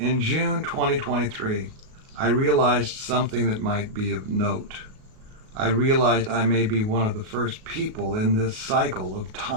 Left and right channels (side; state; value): left; late; 37 ms